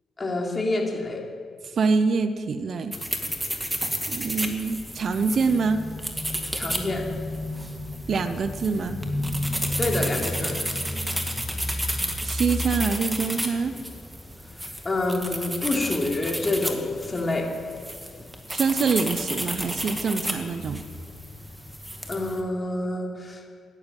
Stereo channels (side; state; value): both; normal; correlation 0.86